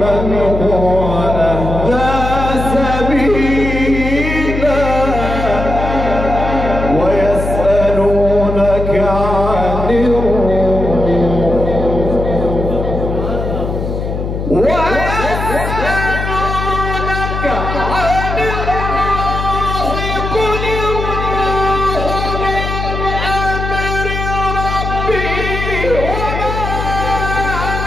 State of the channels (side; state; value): left; noise; hum, 4 dB below the sound